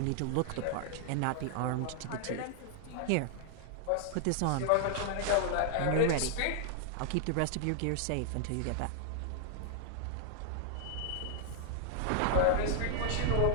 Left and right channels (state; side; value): different; both; correlation -0.01